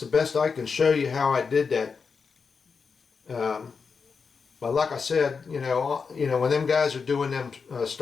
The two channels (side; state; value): right; quieter; 5.4 dB